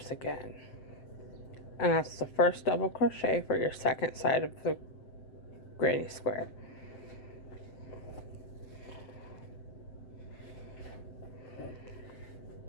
again. And that's the first double crochet for your second side of the granny square.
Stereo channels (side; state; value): right; late; 7.8 ms